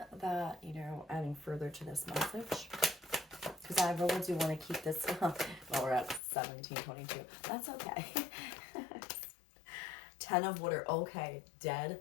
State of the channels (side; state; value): right; drops out; at 6.2 s